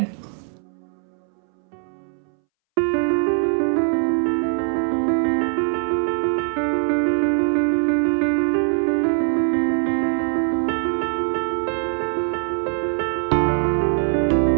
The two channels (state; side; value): silent; left; 63 dB below the other